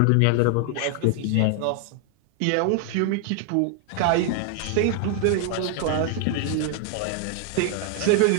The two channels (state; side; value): different; both; correlation 0.00